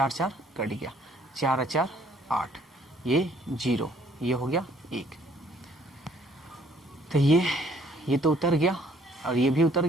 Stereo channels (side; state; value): both; normal; correlation 0.62